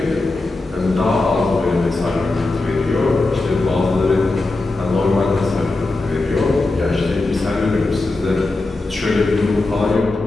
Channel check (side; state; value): right; quieter; 3.2 dB